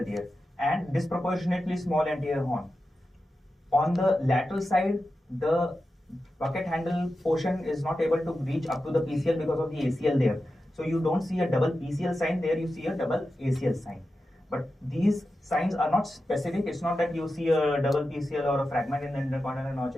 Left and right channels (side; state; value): both; normal; correlation 0.91